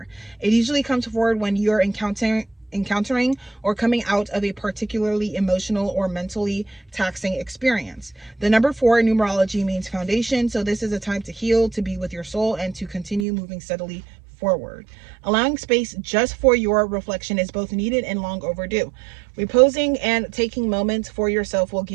It usually comes forward when you're encountering or coming out of a particularly emotional or mentally taxing experience. The number 4 in numerology means foundation, so this is a time to heal, to be with your soul, and to continue moving steadily forward. Allowing space just for your reflection is both needed and long overdue. Reposing and taking moments for yourself will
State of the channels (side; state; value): left; drops out; at 13.2 s